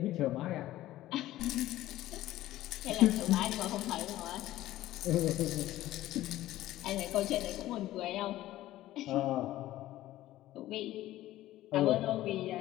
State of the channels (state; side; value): quieter; right; 15.1 dB